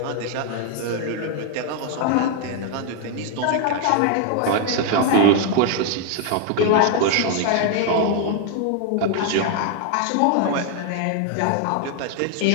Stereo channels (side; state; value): both; different; correlation 0.00